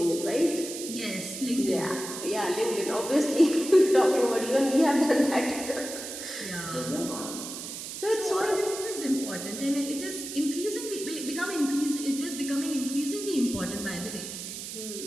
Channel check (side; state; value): right; noise; hiss, 8 dB below the sound